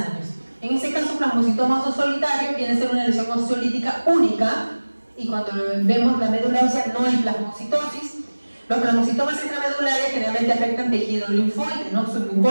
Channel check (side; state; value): both; inverted; correlation -1.00